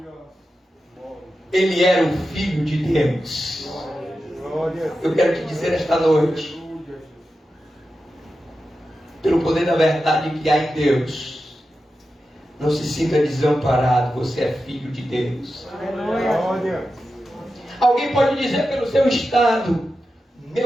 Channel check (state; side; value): normal; both; correlation 0.91